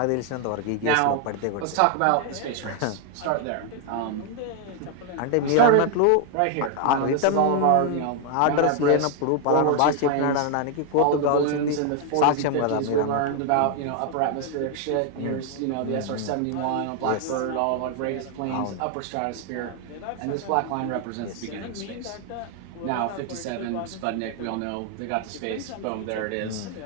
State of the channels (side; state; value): both; different; correlation 0.00